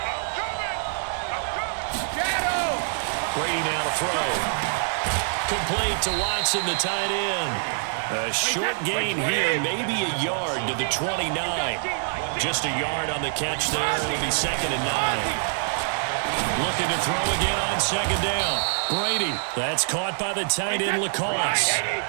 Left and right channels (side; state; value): left; silent; 59 dB below the other